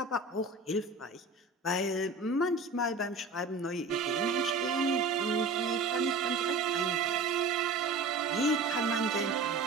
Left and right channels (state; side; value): quieter; left; 3.6 dB